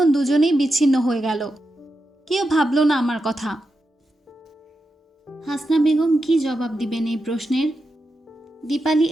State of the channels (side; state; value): both; normal; correlation 0.88